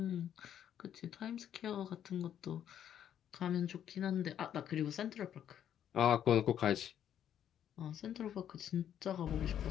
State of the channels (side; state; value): right; quieter; 9.9 dB